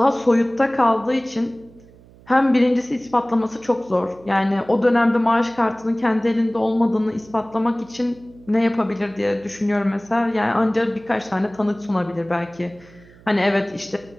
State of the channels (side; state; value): right; noise; hum, 25 dB below the sound